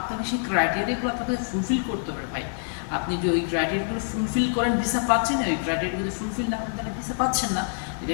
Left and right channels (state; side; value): silent; right; 61 dB below the other